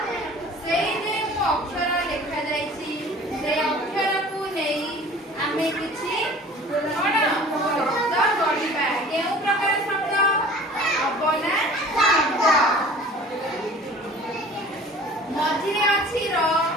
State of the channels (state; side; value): normal; both; correlation 0.45